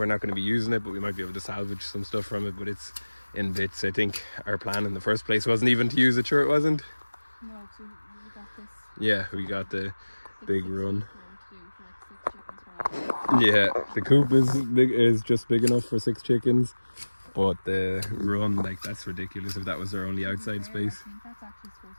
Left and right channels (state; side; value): inverted; both; correlation -1.00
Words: not going to be using it, but we might be able to salvage some stuff from it, but it's in bits. I think our plan in the first place wasn't even to use it. Sure it wasn't? No, so we got this. Yeah, we got the big run. Yeah, the coop is just big enough for 6 chickens, but the run, like, that's ridiculous if that was their only outside space. I think that's actually supposed